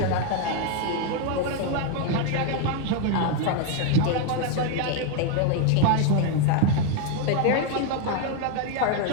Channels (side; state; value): both; different; correlation 0.01